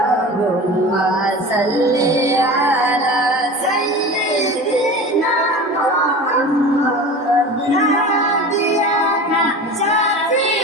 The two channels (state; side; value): normal; both; correlation 0.34